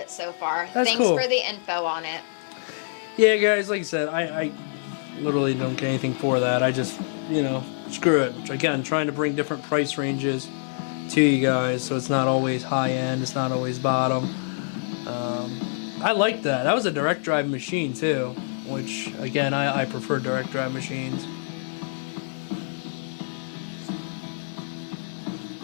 so far. That's Thanks cool. for the info on it. Yeah, guys, like I said, I literally don't get anything for that. I just, you know, screw it. Again, trying to bring different price ranges to you guys, so it's not always high end, it's not always bottom. I like that. That was a direct drive machine too, which again, I prefer direct drive machines.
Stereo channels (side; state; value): right; silent; 61 dB below the other